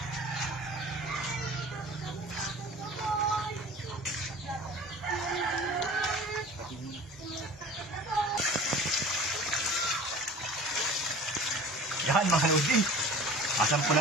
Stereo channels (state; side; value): normal; both; correlation 0.42